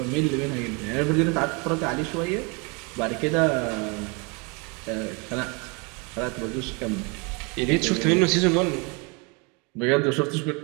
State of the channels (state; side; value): quieter; left; 31.2 dB